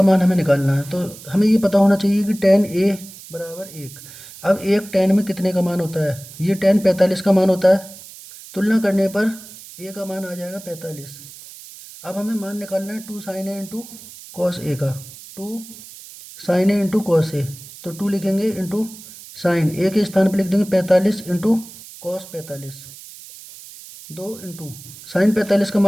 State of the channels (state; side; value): noise; right; hiss, 17 dB below the sound